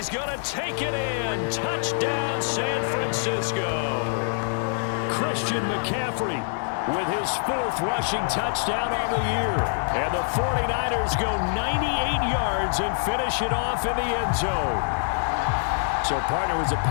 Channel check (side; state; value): right; silent; digital silence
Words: going to take it in. Touchdown, San Francisco. Christian McCaffrey with his 4th rushing touchdown on the year. And the 49ers go 98 yards and finish it off in the end zone. So, partner, it was a